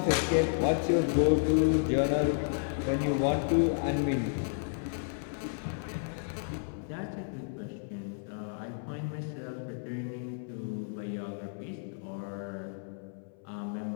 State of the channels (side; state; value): right; silent; 56 dB below the other